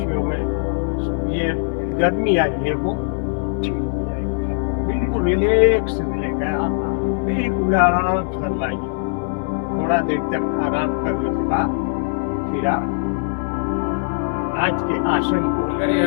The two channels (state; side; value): silent; right; 62 dB below the other